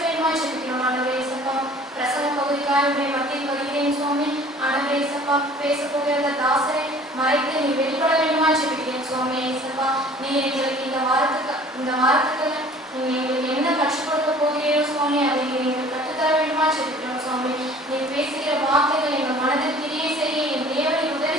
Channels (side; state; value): both; normal; correlation 0.49